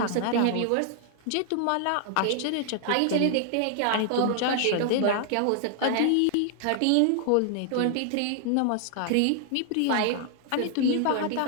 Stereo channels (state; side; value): different; both; correlation 0.00